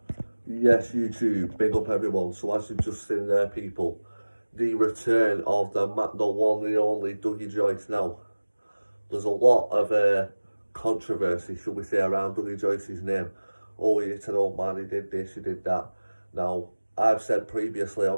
Yes, YouTube, big up everyone. So as you've just seen there, people, the return of the one and only Dougie Joyce now. There's a lot of controversy, should we say, around Dougie Joyce's name. Oh, he's an old man, he did this, he did that. Now, I've said previously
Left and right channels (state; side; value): inverted; both; correlation -1.00